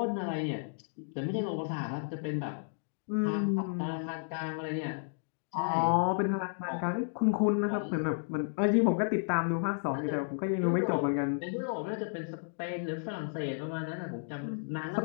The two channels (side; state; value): right; silent; digital silence